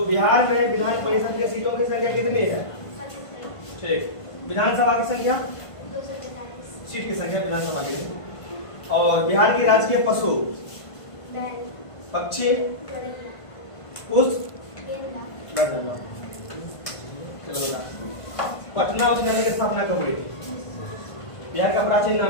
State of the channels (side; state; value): right; late; 1.5 ms